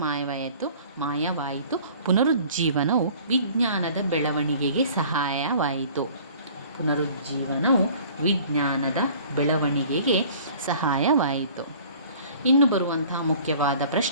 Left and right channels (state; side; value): inverted; both; correlation -0.49